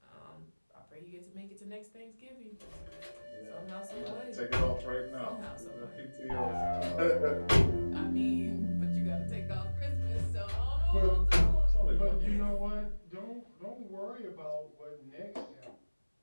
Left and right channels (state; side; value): inverted; both; correlation -1.00